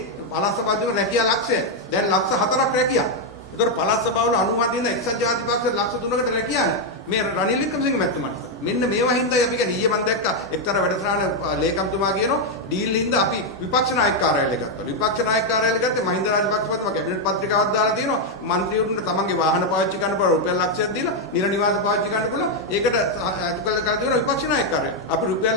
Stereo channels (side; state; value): both; normal; correlation 0.01